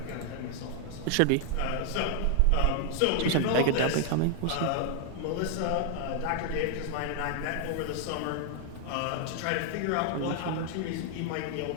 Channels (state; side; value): different; both; correlation 0.00